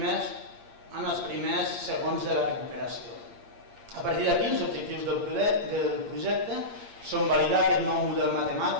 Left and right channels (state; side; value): late; left; 8.7 ms